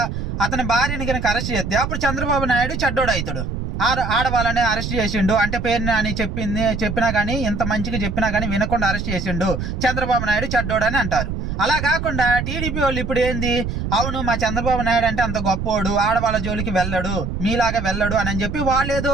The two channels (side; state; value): right; noise; rumble, 4 dB below the sound